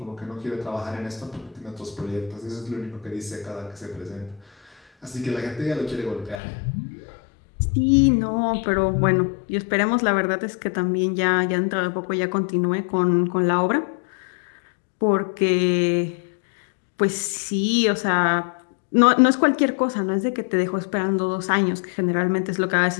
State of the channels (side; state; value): right; drops out; at 6.4 s